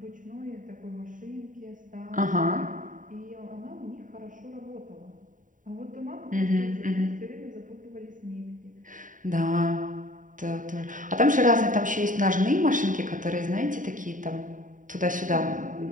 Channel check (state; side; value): late; left; 0.38 ms